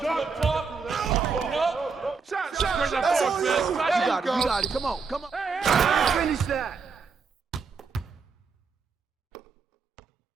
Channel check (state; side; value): quieter; left; 5.0 dB